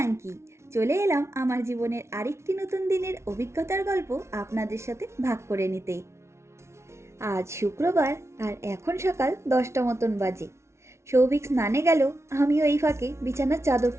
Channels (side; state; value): left; late; 0.13 ms